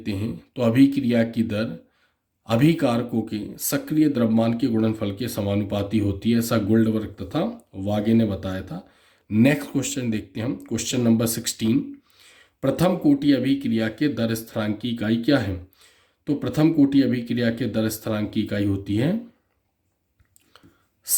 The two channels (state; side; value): identical; both; correlation 1.00